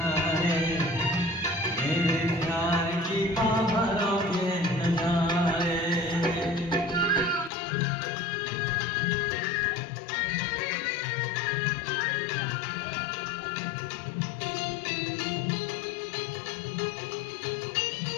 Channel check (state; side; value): drops out; right; at 7.5 s